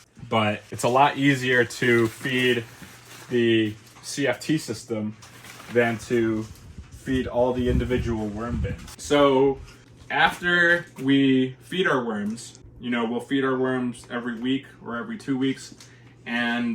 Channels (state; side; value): identical; both; correlation 1.00